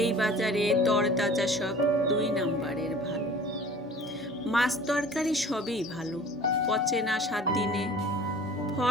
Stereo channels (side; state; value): both; normal; correlation 0.45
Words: বাজারে তরতাজা সব 2 নাম্বারের ভালো। মাছ তরকারি সবই ভালো, পচে না 7 দিনে।